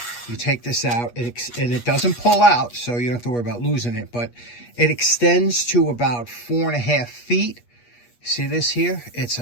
You take this out, and it doesn't pull out, so you don't have to worry about losing it. But it extends to about 4.5 feet. See this here? It's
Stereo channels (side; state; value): right; late; 8.4 ms